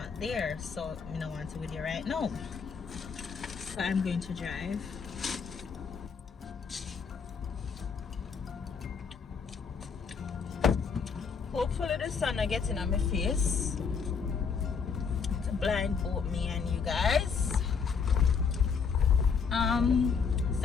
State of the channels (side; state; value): right; quieter; 5.9 dB